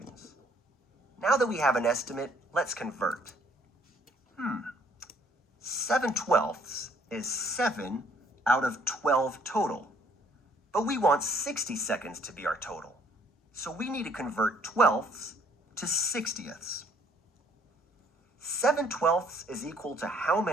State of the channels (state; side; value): normal; both; correlation 0.63